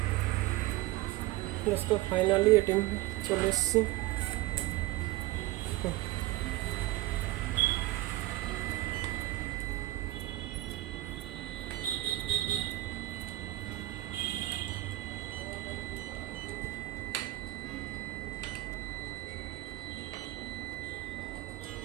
দোস্ত, ফাইনালি এটিএম চলে এসেছি।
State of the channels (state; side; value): quieter; left; 17.6 dB